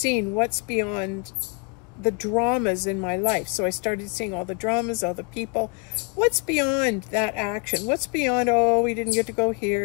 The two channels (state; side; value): quieter; right; 34.7 dB